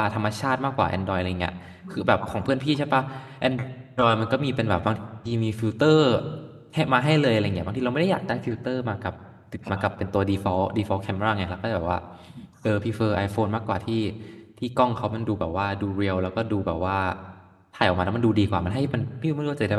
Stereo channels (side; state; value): both; identical; correlation 1.00